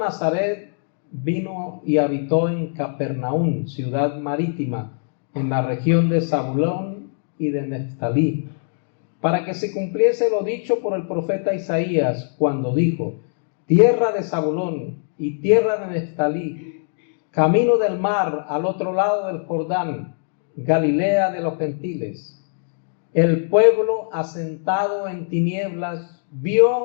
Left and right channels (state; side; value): silent; right; digital silence